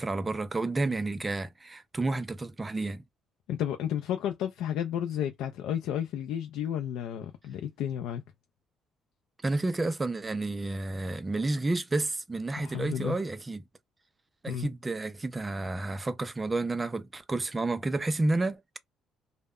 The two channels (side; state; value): both; normal; correlation 0.82